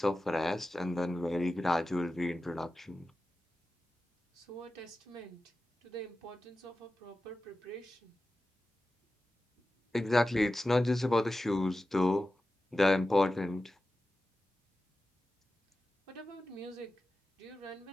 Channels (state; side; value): normal; both; correlation 0.94